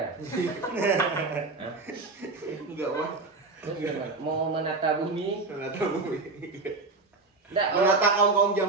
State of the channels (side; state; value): left; quieter; 3.7 dB